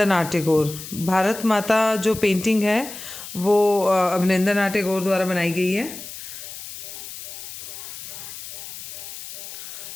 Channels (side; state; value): left; noise; hiss, 11 dB below the sound